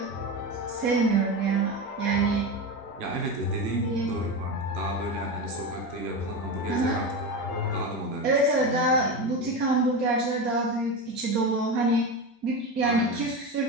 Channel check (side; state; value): both; normal; correlation 0.20